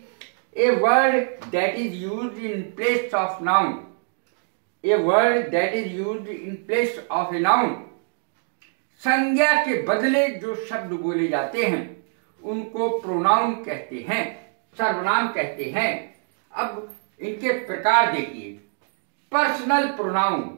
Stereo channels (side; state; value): left; silent; digital silence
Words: A word that is used in place of noun, a word that is used in place of a noun. संज्ञा के बदले जो शब्द बोले जाते हैं उनको प्रोनाउन कहते हैं, सर्वनाम कहते हैं। अब इनके प्रकार देखिए। पर्सनल प्रोनाउन